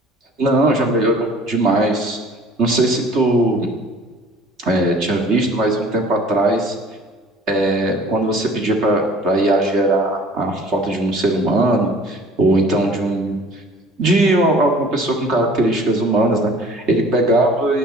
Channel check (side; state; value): both; normal; correlation 0.49